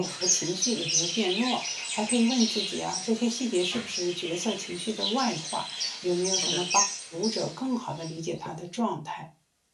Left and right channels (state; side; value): identical; both; correlation 1.00